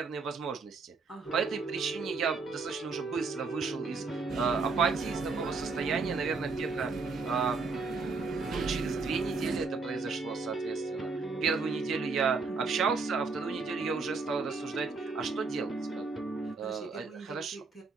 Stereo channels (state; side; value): quieter; left; 4.4 dB